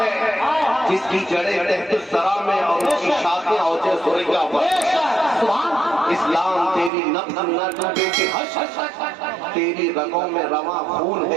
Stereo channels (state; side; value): drops out; left; at 6.9 s